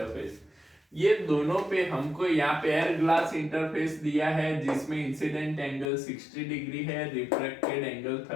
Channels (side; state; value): right; drops out; at 5.9 s